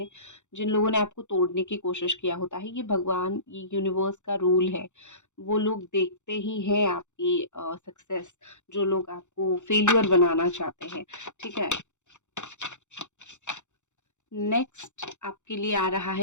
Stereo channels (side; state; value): right; late; 0.84 ms